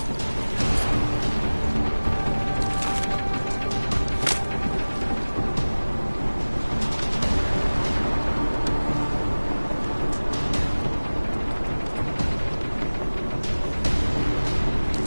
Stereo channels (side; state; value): both; inverted; correlation -1.00